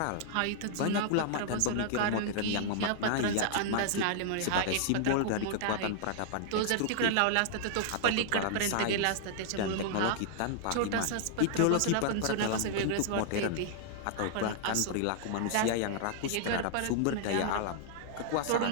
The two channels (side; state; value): both; different; correlation -0.01